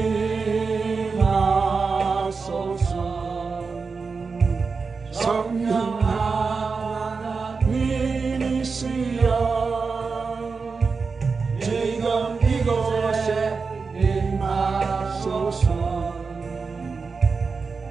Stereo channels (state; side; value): quieter; left; 4.8 dB